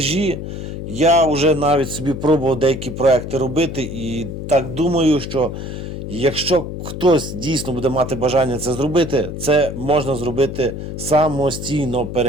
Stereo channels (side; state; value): left; noise; hum, 7 dB below the sound